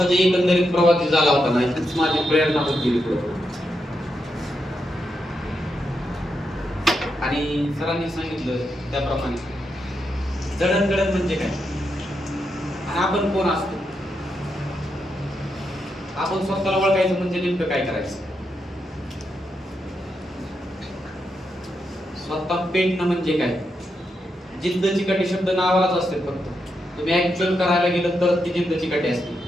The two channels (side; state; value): both; normal; correlation 0.84